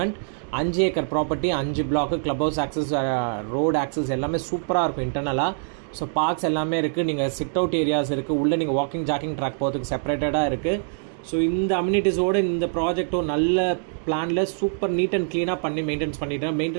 5 acre property, 5 block, club house access, road access எல்லாமே சூப்பராக இருக்கும் இன்டர்னலாக. ஸோ பார்க்ஸ் எல்லாமே இருக்குது. நீங்கள் சிட் அவுட் ஏரியாஸ் இருக்குது. உள்ளே நீங்கள் வாக்கிங் ஜாக்கிங் ட்ராக் போகிறதுக்கு செப்பரேட்டடாக இருக்குது. ஸோ இந்த அம்யூனிட்டிஸோடு இந்த ப்ராஜெக்ட்டும் நல்ல பிளானில் சூப்பர் நீட் அண்ட் க்ளீனாக பண்ணி மெயின்டெனன்ஸ் பண்ணிட்டேன்.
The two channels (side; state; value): left; silent; digital silence